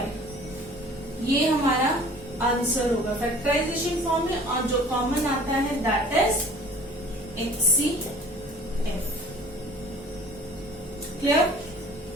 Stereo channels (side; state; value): both; normal; correlation 0.48